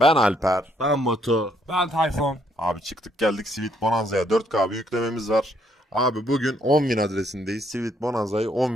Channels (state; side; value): normal; both; correlation 0.70